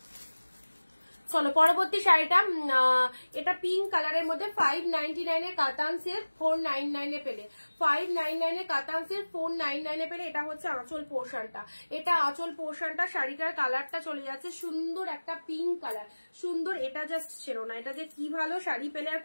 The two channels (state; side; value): inverted; both; correlation -1.00